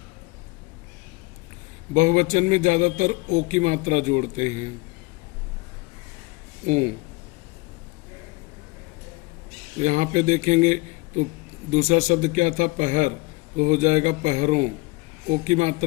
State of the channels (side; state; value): right; quieter; 24.4 dB